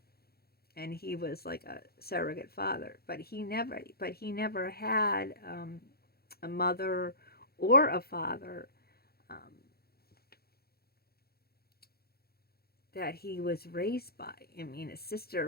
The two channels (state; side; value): late; right; 0.45 ms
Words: And he was like a surrogate father. But he never had a mother or a father that he was raised by. I mean, his